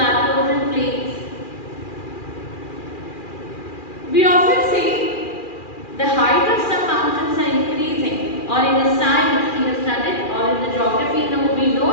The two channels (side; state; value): right; late; 2.4 ms